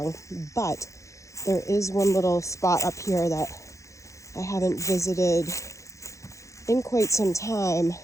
but there is one little spot up here that I haven't visited in quite some time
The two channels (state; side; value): late; right; 0.15 ms